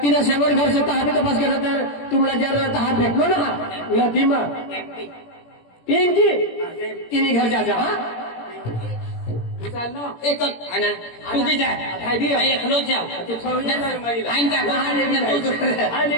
तिनं शेवट घर से तहा भी तपास केला तर तुम्हाला जर तहा भेटलो ना नदी मग पिंकी तिने घर जा हा एक आना तू भी जा मैं एकलो जाओ आइन का आणि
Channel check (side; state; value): right; late; 17 ms